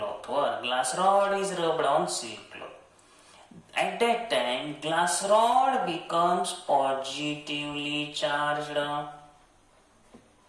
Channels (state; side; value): identical; both; correlation 1.00